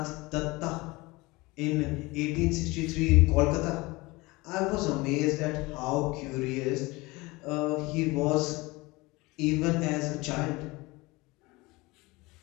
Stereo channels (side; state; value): right; quieter; 22.8 dB